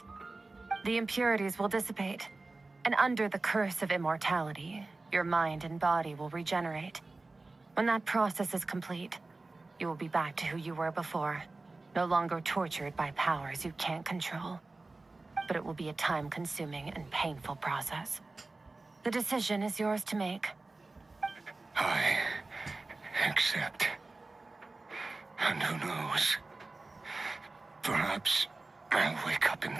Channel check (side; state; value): left; quieter; 3.3 dB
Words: The impurities will dissipate, and under the curse of immortality, your mind and body will regenerate. When that process is complete, you will be back to who you were before, no longer tortured by powers you can't control. But it will be a time-consuming and painful process. The decision is yours to make. I accept. And who knows? Perhaps I'll wake up in